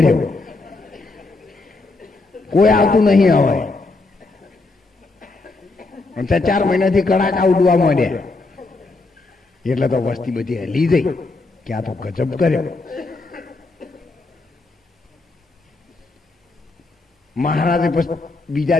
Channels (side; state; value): right; quieter; 3.4 dB